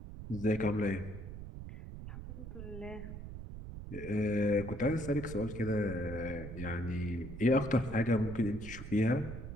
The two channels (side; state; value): right; noise; rumble, 9 dB below the sound